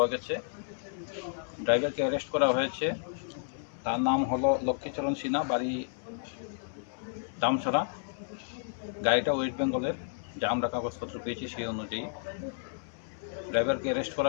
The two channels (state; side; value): silent; right; 57 dB below the other